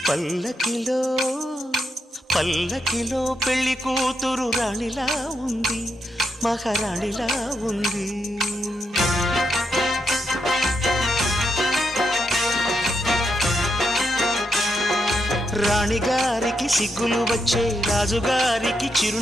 పల్లకిలో పల్లకిలో పెళ్లి కూతురు రాణిలా ఉంది, మహారాణిలా ఉంది. రాణిగారికి సిగ్గులు వచ్చే, రాజుగారికి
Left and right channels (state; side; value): normal; both; correlation 0.82